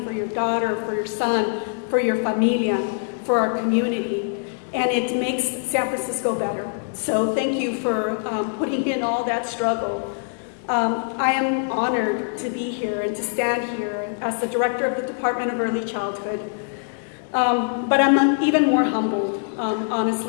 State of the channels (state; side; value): silent; right; digital silence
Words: for your daughter, for your son, for your familia, for our community. And it makes San Francisco better. So thank you for putting in all that struggle. I am honored to be here and to stand here as the director of the Department of Early Childhood. But I'm even more humbled,